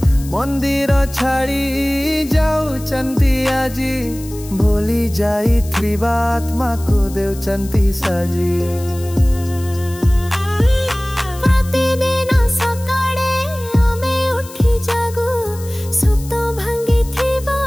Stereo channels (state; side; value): noise; left; hiss, 17 dB below the sound